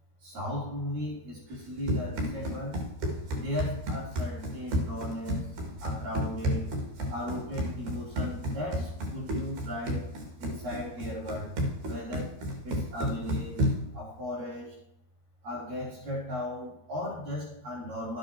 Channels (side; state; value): left; late; 13 ms